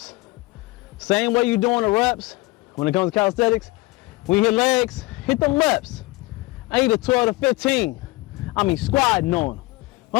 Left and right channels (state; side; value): quieter; right; 22.4 dB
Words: Same way you doing the reps when it comes to calisthenics. When you hit legs, hit them reps. I need a 12 to 15. I mean squatting on them.